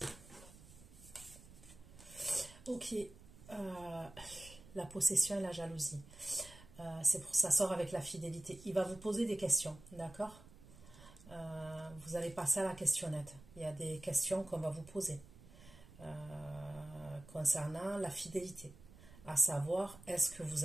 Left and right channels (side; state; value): right; noise; rumble, 19 dB below the sound